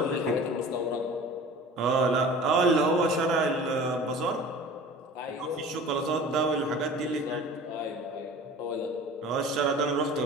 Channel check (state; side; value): normal; both; correlation 0.41